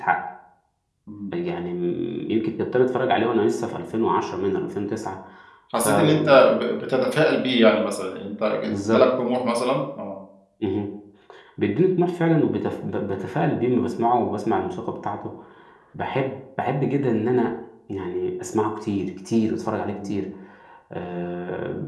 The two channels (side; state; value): both; identical; correlation 1.00